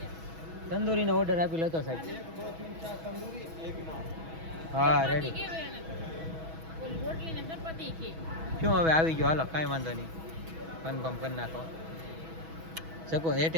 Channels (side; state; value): left; late; 6.2 ms